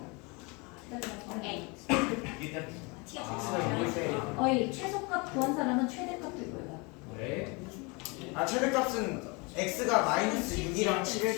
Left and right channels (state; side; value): quieter; right; 28.9 dB